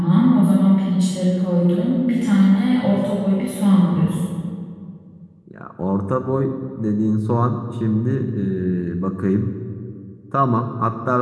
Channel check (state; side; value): identical; both; correlation 1.00